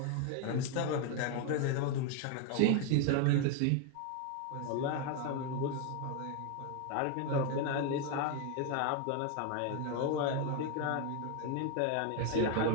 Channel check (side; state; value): both; different; correlation 0.01